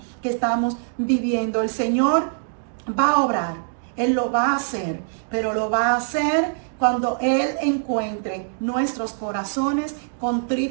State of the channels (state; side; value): silent; left; 63 dB below the other